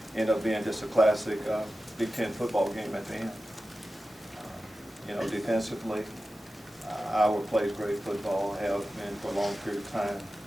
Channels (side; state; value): both; normal; correlation 0.94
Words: ended up being just a classic Big Ten football game at the end. Defensively, Iowa plays great football, have been for a long period of time.